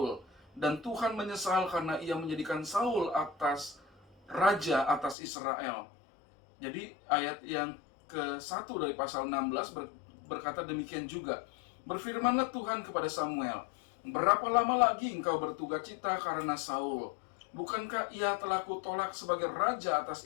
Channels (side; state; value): right; drops out; at 5.2 s